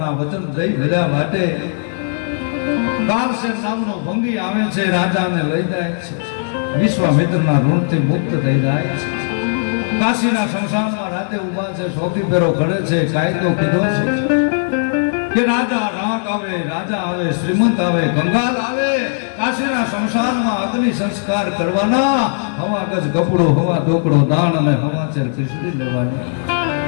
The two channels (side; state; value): right; silent; digital silence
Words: વચન જઈ ભર્યા વાટે. કારસેન નામનો ભંગી આવે છે, રાજાને લઈ જાય છે, વિશ્વામિત્રના ઋણથી મુક્ત થઈ જાય છે. કાશીના શમશાનમાં રાતે ઉભા છે, સૌથી પેરો ઘડે છે. કાયદો કીધો છે કે રાજા રાક આવે, રાજા આવે, શ્રીમંત આવે, કંગાલ આવે, કાશીના શમશાનમાં અગ્નિ સંસ્કાર કરવાના. હવા ગજ કપડો, હવા ઢોકળો, દાણ અને હવાચેર ખીચડી લેવાની.